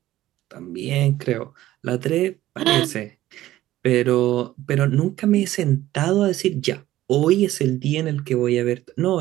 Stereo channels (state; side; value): quieter; left; 14.8 dB